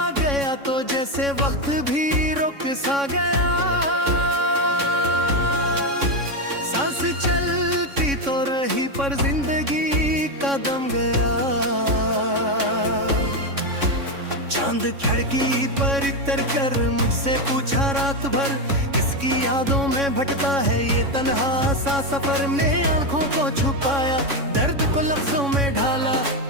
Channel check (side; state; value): left; late; 3.6 ms